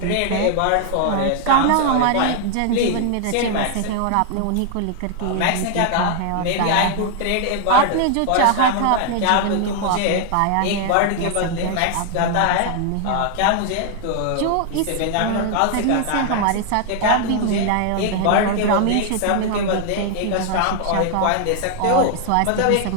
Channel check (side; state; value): both; different; correlation 0.00